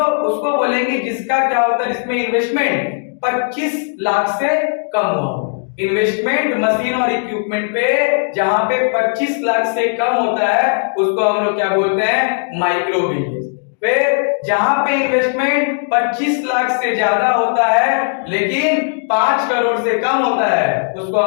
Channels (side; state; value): right; silent; digital silence